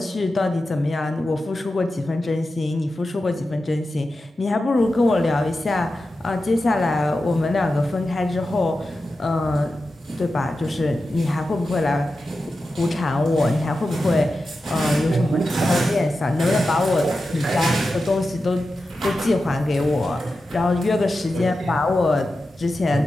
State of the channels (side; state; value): both; normal; correlation 0.91